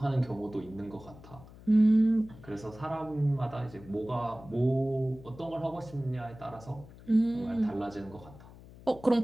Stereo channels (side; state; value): left; noise; hum, 19 dB below the sound